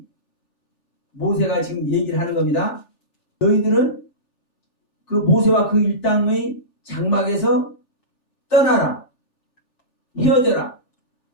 모세가 지금 얘기를 하는 겁니다. 너희들은 그 모세와 그 일당의 장막에서 떠나라, 헤어져라,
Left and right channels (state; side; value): late; right; 3.4 ms